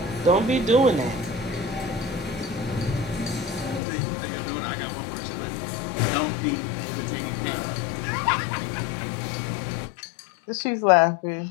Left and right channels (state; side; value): drops out; right; at 3.8 s